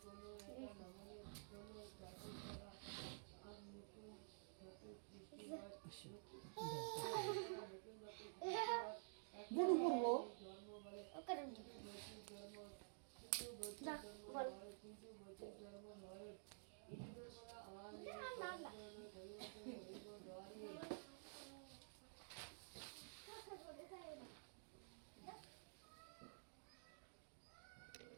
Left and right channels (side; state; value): left; silent; digital silence